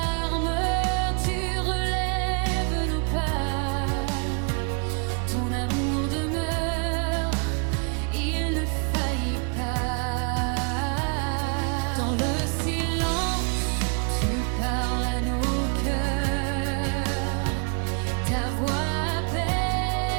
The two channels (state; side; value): quieter; left; 35.9 dB